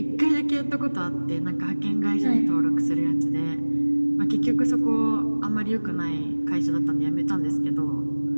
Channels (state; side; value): inverted; both; correlation -1.00